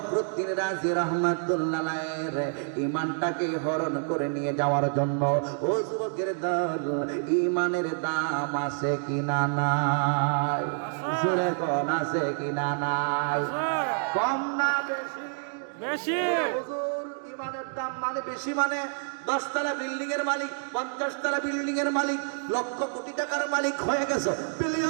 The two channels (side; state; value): left; silent; digital silence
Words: রাজি রহমাতুল্লাহ আলাইহির ঈমানটাকে হরণ করে নিয়ে যাওয়ার জন্য। ও যুবকের দল, ঈমানের দাম আছে কিনা নাই? জোরে কোন আছে কিনা নাই? কম না বেশি? বেশি। হুজুর, ঈমানের দাম মানে বেশি মানে 10 তলা বিল্ডিং এর মালিক, 50 তলা বিল্ডিং এর মালিক, লক্ষ কোটি টাকার মালিক হয়ে গেছে,